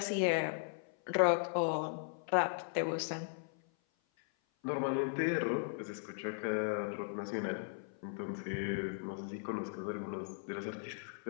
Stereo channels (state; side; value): silent; right; 53 dB below the other